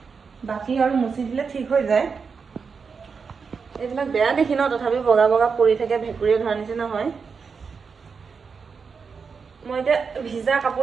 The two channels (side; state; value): left; quieter; 5.5 dB